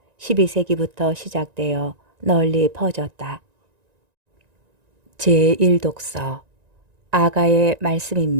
12세기부터 시작되어 널리 퍼졌다. 제1독서 아가의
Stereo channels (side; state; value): left; late; 1.9 ms